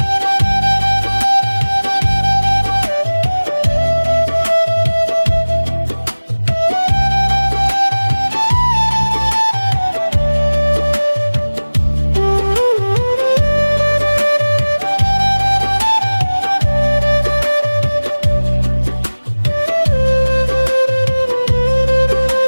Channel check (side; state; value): both; inverted; correlation -1.00